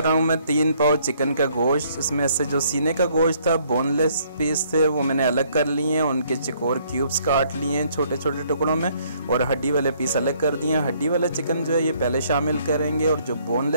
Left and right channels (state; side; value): inverted; both; correlation -0.65